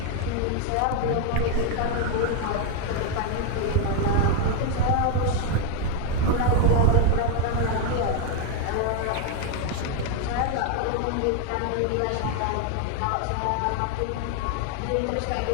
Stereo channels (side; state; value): both; different; correlation 0.01